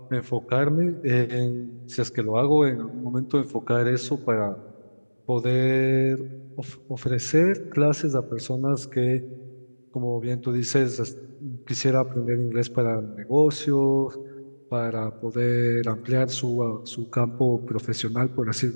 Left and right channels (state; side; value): inverted; both; correlation -1.00